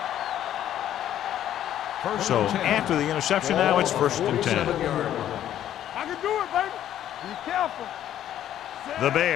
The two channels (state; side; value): quieter; right; 11.4 dB